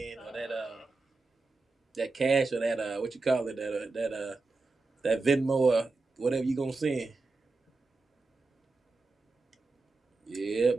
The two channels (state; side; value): quieter; left; 3.7 dB